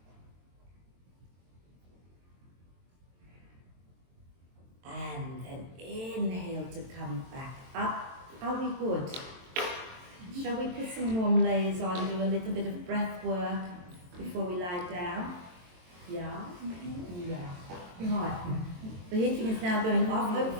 And then inhale to come back up. Are we good? Shall we put some warm layers on, do a little bit of breath work before we lie down? Yeah? Yeah. Right. The heating is now going off.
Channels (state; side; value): late; left; 22 ms